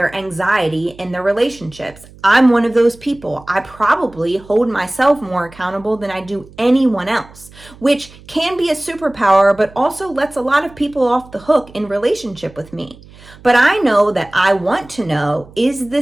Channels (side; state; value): right; noise; hum, 22 dB below the sound